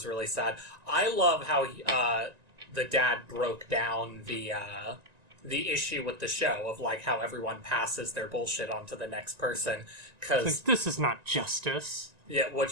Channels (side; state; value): left; late; 1.9 ms